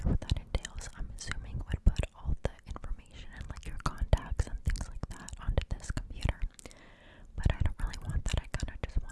what that entails. I'm assuming it would put all the information and like your contacts and things like that onto this computer. But I don't really want that. I kind of just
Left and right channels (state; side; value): identical; both; correlation 1.00